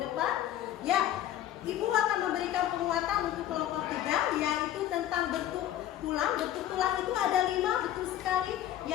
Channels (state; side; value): quieter; right; 12.3 dB